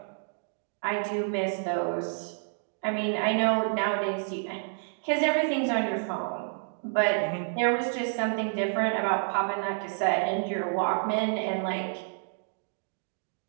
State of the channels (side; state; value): left; silent; digital silence